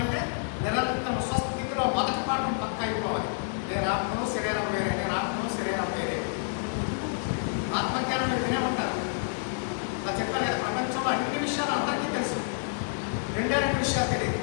నిరంతరం స్వస్థితిలో మొదటి పాఠం పక్క అయిపోవాలి. నేను ఆత్మను శరీరం వేరే, నేను ఆత్మను శరీరం వేరే. ఆత్మజ్ఞానం మీరు వినే ఉంటారు. ఇలా చెప్పాను కదా, ప్రపంచంలో అన్ని విషయాలు అందరికీ తెలుసు, 2 విషయాలు తెలియదు.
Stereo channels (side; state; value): right; silent; digital silence